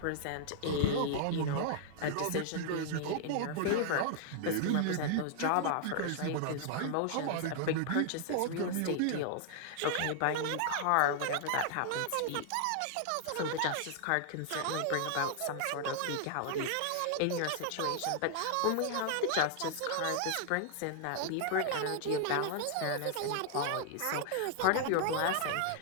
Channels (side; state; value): both; different; correlation 0.00